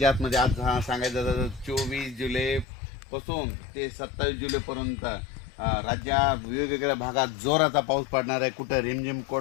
म्हणजे आज सांगायचं झालं 24 जुलैपासून ते 27 जुलैपर्यंत राज्यात वेगवेगळ्या भागात जोराचा पाऊस पडणार आहे. कुठं रिमझिम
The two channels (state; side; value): drops out; right; at 2.7 s